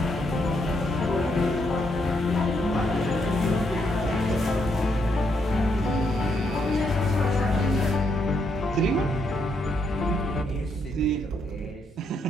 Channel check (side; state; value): both; normal; correlation 0.76